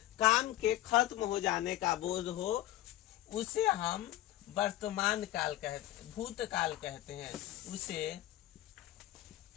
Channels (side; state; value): right; quieter; 14.8 dB